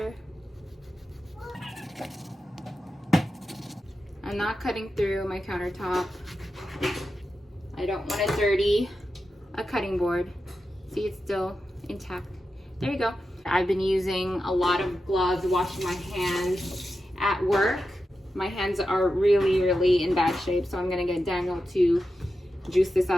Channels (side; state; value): both; normal; correlation 0.90